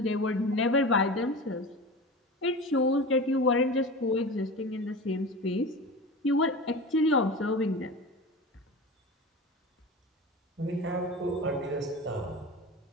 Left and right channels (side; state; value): both; normal; correlation 0.31